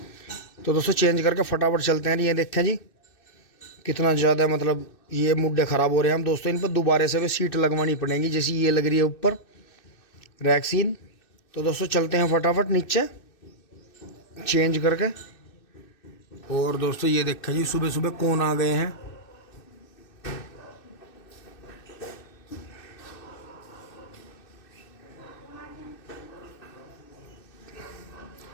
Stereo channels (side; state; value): right; late; 2.6 ms